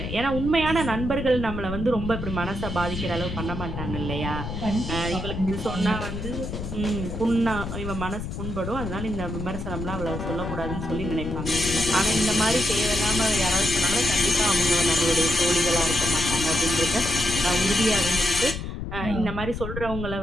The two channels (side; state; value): left; noise; rumble, 6 dB below the sound